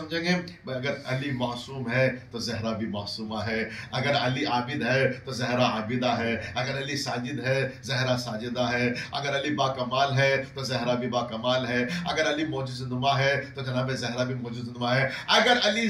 گے؟ اگر علی معصوم ہے تو زہرا بھی معصومہ ہے، اگر علی عابد ہے تو زہرا عابدہ ہے، اگر علی ساجد ہے زہرا ساجدہ ہے، اگر علی با کمال ہے تو زہرا بھی با کمال ہے، اگر علی معجزہ نما ہے تو جناب زہرا بھی معجزہ نما ہے، اگر علی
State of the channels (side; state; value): both; identical; correlation 1.00